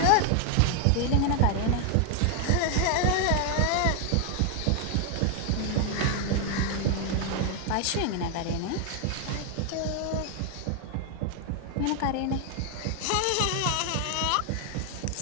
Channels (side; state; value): both; different; correlation 0.00